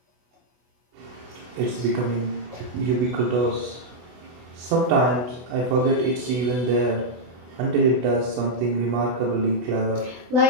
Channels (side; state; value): left; late; 24 ms